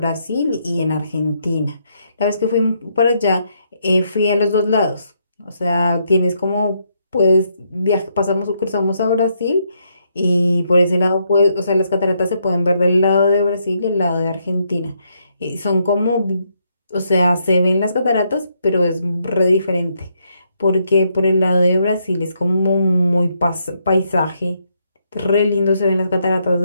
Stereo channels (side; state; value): both; inverted; correlation -0.76